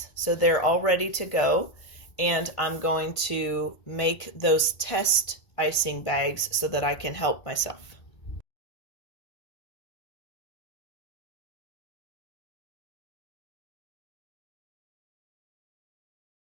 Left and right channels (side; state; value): right; late; 1.5 ms